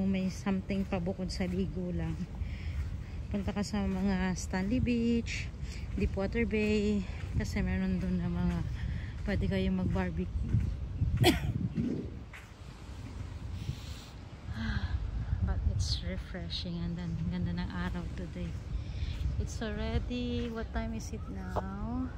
may something pa bukod sa ligo lang, punta ka sa mga Stanley Beach, Deepwater Bay, kasi meron doon na mga pwede kayong mag barbecue. But it's refreshing and then ganda ng araw today. It's already, what time is it now?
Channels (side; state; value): both; identical; correlation 1.00